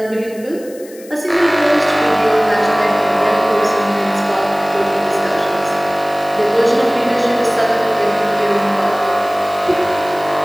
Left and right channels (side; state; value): left; noise; hiss, 22 dB below the sound